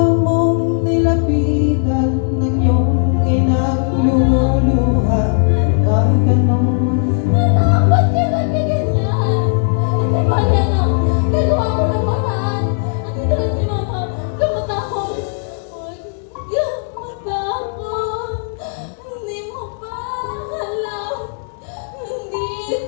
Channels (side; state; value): right; silent; 66 dB below the other